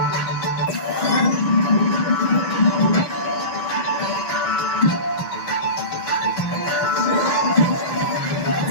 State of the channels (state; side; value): late; right; 6.1 ms